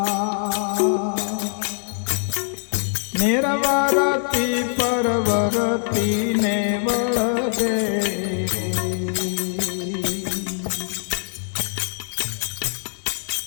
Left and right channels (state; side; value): silent; right; digital silence